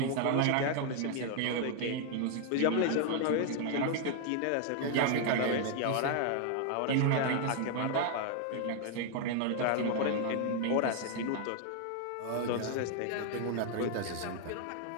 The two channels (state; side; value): different; both; correlation 0.00